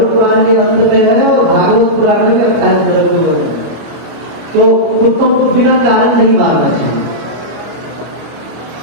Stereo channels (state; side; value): late; left; 25 ms